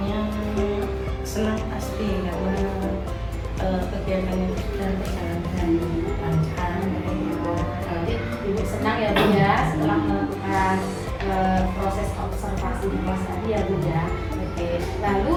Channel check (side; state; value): both; identical; correlation 1.00